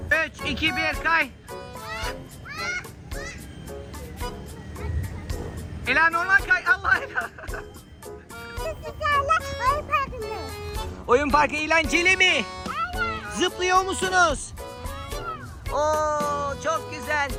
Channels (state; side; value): identical; both; correlation 1.00